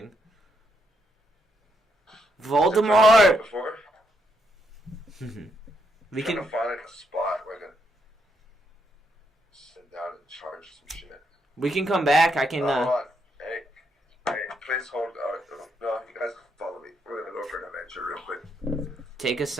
Voldemort! We can find like a spot where I can sit down and charge some shit. We can come back. I can. Hold on. Hey, please hold. No, you guys follow me. We're gonna go for an adventure real quick. Take us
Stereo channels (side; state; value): both; normal; correlation 0.77